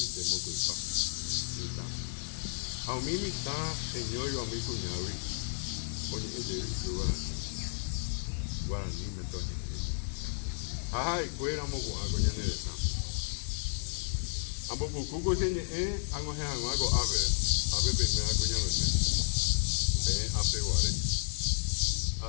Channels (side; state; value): right; silent; digital silence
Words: mokoipa. Mitã. Ha umi mitã heñóiva umi kuñágui oñe'ẽjey Guarani metoñe'ẽ. Ha ha'ekuéra moko'ãko ñane retã. Ambopukúko cheñe'ẽ ag̃uahẽhag̃ua ko ápe peimíva kuñameme. Peẽ ápe guare.